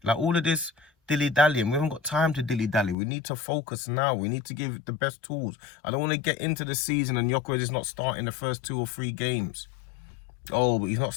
Like all of this dilly-dallying. We haven't got time to dilly-dally. We need to focus now. We need to give it the best tools. I don't want to get into the season and Gyökeres is not starting the first 2 or 3 games. Oh, but he's not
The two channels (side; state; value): right; drops out; at 3.0 s